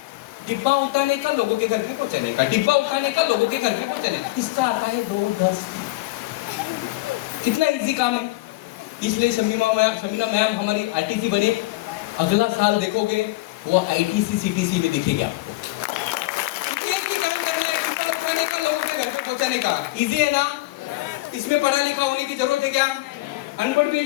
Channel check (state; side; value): quieter; right; 19.5 dB